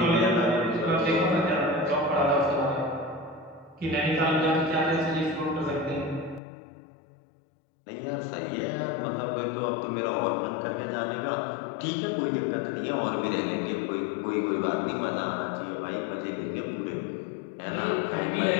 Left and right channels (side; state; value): right; drops out; at 6.4 s